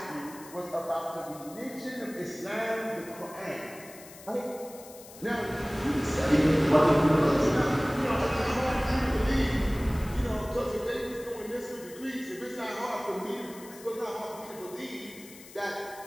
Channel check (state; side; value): noise; left; hiss, 18 dB below the sound